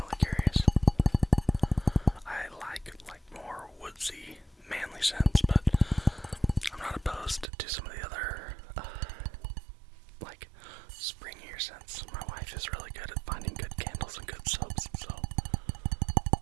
curious. I like more woodsy, manly scents, but I'm not opposed to some of the other, like, springier scents. My wife is really good at finding good candles and good soaps, so.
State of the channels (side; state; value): left; drops out; at 7.5 s